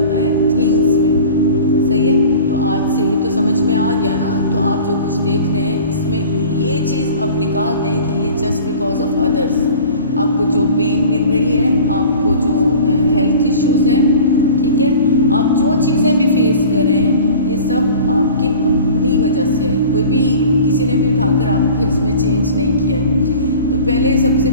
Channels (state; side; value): inverted; both; correlation -0.42